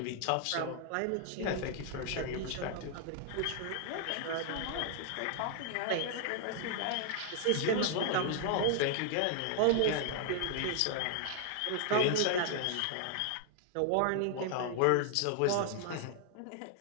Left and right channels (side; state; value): both; different; correlation 0.00